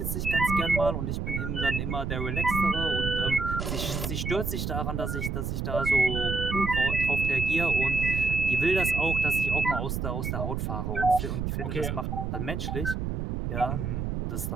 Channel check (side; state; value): right; noise; rumble, 2 dB below the sound